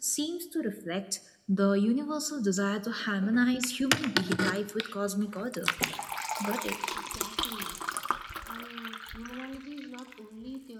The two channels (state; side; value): identical; both; correlation 1.00